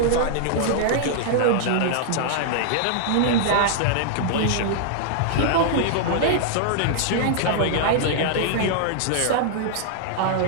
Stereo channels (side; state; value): both; different; correlation -0.01